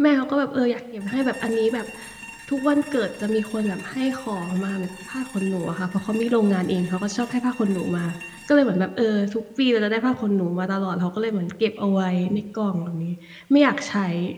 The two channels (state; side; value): identical; both; correlation 1.00